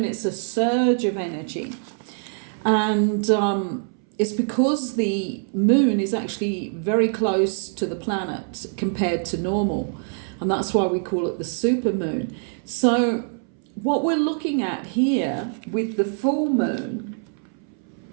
it's a surge of energy, and it's because the moon is actually very close to the planet compared to normal. And that's why we call it the supermoon. So what we're looking at here with the full moon,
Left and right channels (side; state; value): left; silent; 62 dB below the other